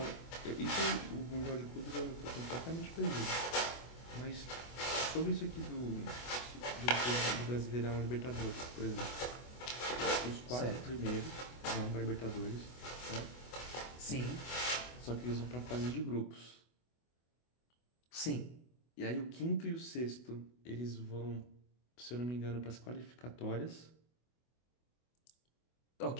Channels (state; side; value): late; right; 24 ms